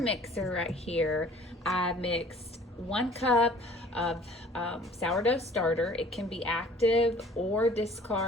right here, I mixed 1 cup of sourdough starter. It can be active or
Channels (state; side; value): normal; both; correlation 0.51